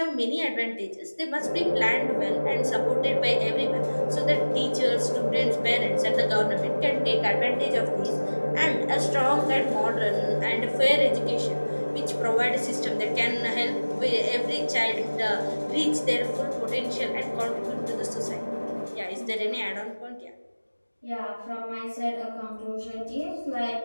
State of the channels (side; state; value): both; inverted; correlation -1.00